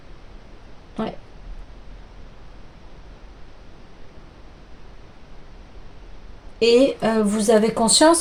Ouais. Et vous avez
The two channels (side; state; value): both; identical; correlation 1.00